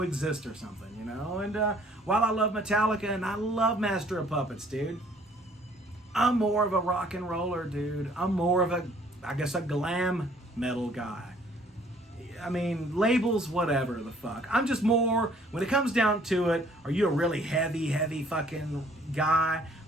or something, And while I love Metallica and I love Master of Puppets, dude, I'm more of a rock and roller, dude. I'm more of a glam metal guy. I mean, labels, whatever the fuck. I'm just more, when it comes down to it, are you a really heavy fucking guy,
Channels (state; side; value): normal; both; correlation 0.59